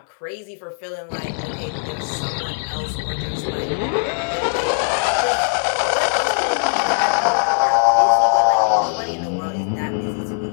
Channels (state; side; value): silent; right; 65 dB below the other